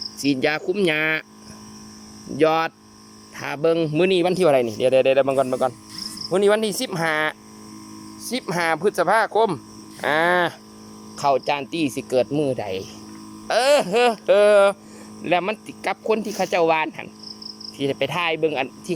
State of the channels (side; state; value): both; identical; correlation 1.00